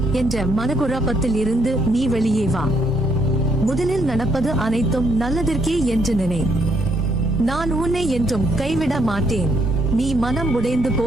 என்ற மனக்குழப்பத்தில் இருந்து நீ வெளியே வா. முதலில் நடப்பது அனைத்தும் நல்லதற்கே என்று நினை. நான் உன்னை என்றும் கைவிட மாட்டேன். நீ மனம் உடைந்து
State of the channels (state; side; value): normal; both; correlation 0.72